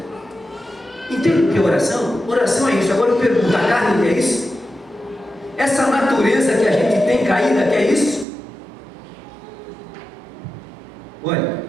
Entende o que é oração? Oração é isso. Agora eu pergunto: a carne quer isso? Essa natureza que a gente tem caída quer isso? Olha,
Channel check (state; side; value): drops out; left; at 8.2 s